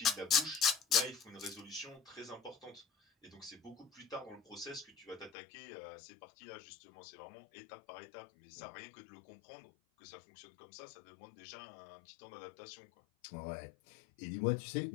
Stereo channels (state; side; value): drops out; right; at 5.3 s